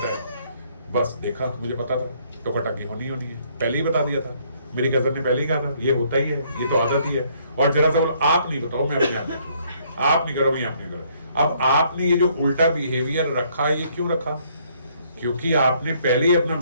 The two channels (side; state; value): both; inverted; correlation -0.66